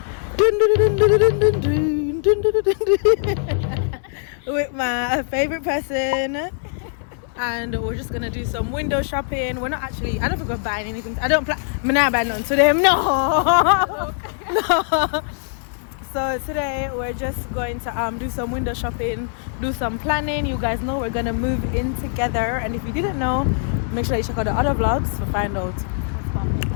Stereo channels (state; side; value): silent; right; digital silence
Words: with my favorite person. And we're just gonna do some window shopping. We're not actually, I don't think we're buying anything. I don't plan, I'm not buying nothing to them, no. No. So today we're just going to do some window shopping, do some planning. You guys know we're gonna move in together, and if you didn't know, make sure you check out the other vlogs to find out what's